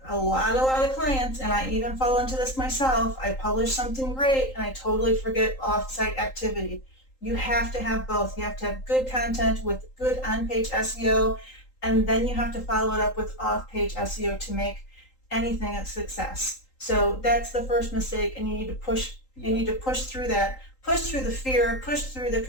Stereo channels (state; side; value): late; right; 3.8 ms